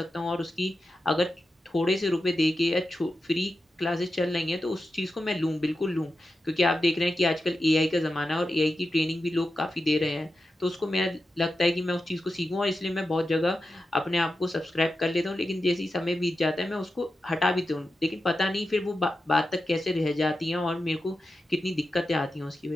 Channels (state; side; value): normal; both; correlation 0.91